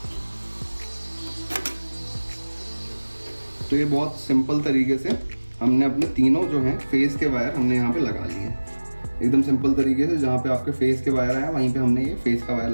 तो ये बहुत सिंपल तरीके से हमने अपने तीनों जो हैं फेस के वायर हमने यहाँ पे लगा लिए, एकदम सिंपल तरीके से। जहाँ पे आपके फेस के वायर आए वहीं पे हमने ये फेस का वायर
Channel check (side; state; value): both; inverted; correlation -1.00